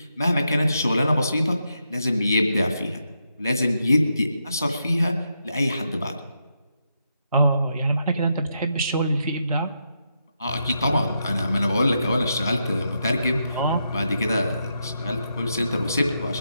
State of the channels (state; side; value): inverted; both; correlation -0.82